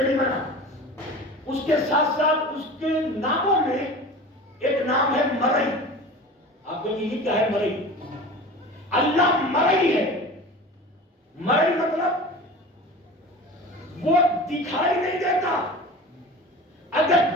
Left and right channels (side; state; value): both; normal; correlation 0.36